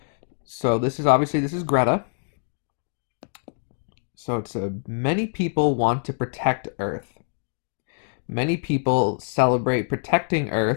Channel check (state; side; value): silent; right; digital silence